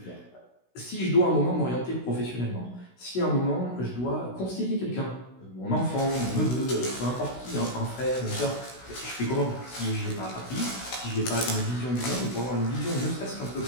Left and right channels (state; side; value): late; right; 16 ms